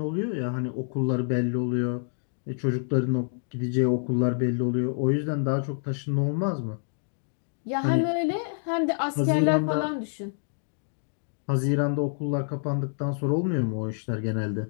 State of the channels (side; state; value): right; silent; digital silence